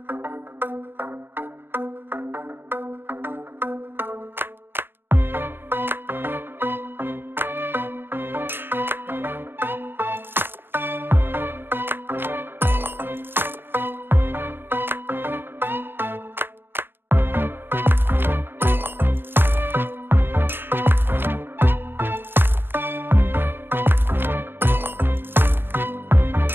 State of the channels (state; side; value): late; left; 0.10 ms